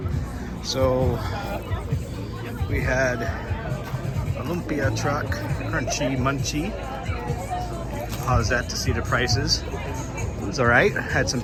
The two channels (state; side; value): identical; both; correlation 1.00